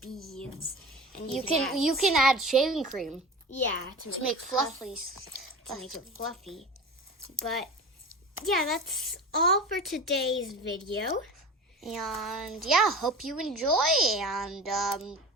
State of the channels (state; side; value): normal; both; correlation 0.33